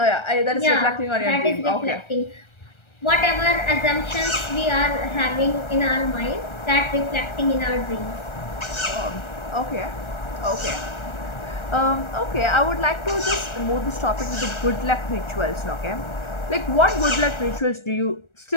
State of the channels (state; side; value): late; right; 1.3 ms